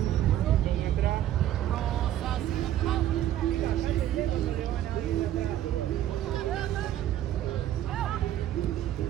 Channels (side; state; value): left; quieter; 12.3 dB